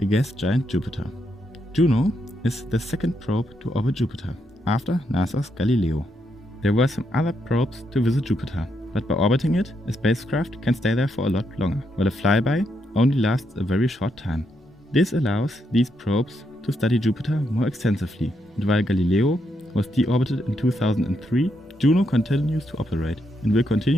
gas giant Jupiter. Juno is the second probe to orbit Jupiter, after NASA's Galileo. There were some other probes to visit Jupiter, but by orbiting it, a spacecraft can stay there for a lot longer, while a flyby only lasts a very short time. This allows these probes to study Jupiter more extensively, and while Galileo was deorbited in 2003, Juno continues to operate and will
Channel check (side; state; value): both; normal; correlation 0.79